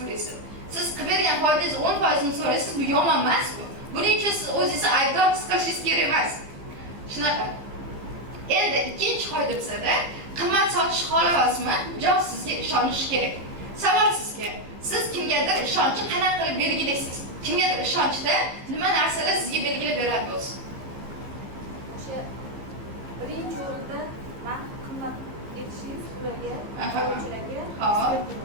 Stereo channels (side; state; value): left; late; 15 ms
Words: Siz qilib bergan foydangiz 10% ni so'raysiz, bu yomon emas bu. Buning uchun siz o'zingizni aybdor his qilishingiz kerak emas. Shunaqa. Endi ikkinchi qoida bizada qimmat sotish xohlayapsizmi? Javob sizga ishonish kerak. Savol sizga. Siz kimgadir ishonchni qanaqa qilib belgilaysiz? Kimgadir ishonchda nima narsalar sizga belgilab beradi o'zi? O'sha birinchi o'rinda men qimmat etishingiz ularga, qonunchilarga,